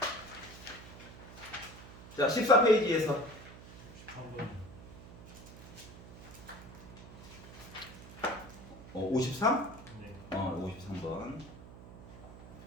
자, 14페이지에서 13번. 53? 네. 53번.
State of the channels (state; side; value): noise; right; hum, 16 dB below the sound